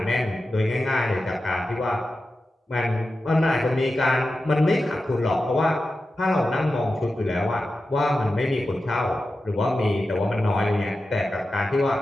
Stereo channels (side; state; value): both; normal; correlation 0.92